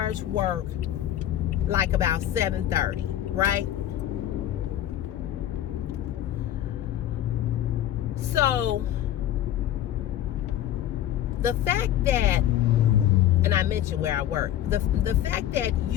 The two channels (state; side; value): quieter; right; 11.9 dB